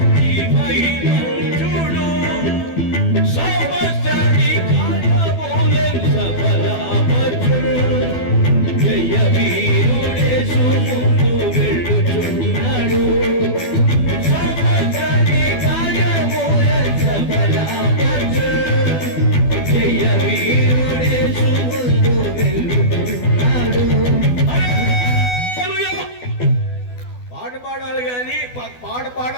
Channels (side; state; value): right; late; 12 ms